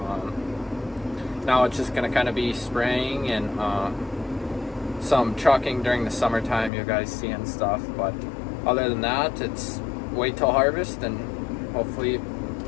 now it's just gonna kind of be spraying and some trucking during the summertime, you guys see and stuff, but other than that, it's wait till harvest and hopefully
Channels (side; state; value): right; drops out; at 6.7 s